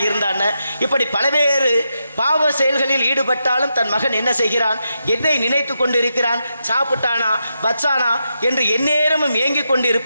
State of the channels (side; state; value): both; inverted; correlation -0.85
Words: இருந்தான, இப்படி பல்வேறு பாவ செயல்களில் ஈடுபட்டாலும் தன் மகன் என்ன செய்கிறான், எதை நினைத்து கொண்டிருக்கிறான், சாப்பிட்டானா வச்சானா என்று எந்நேரமும் ஏங்கிக் கொண்டு